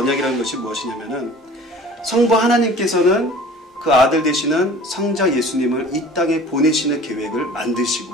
것이 무엇이냐면은, 성부 하나님께서는 그 아들 되시는 성자 예수님을 이 땅에 보내시는 계획을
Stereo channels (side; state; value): both; normal; correlation 0.45